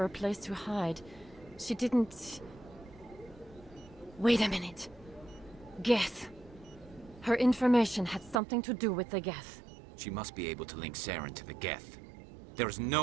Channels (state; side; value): drops out; left; at 8.4 s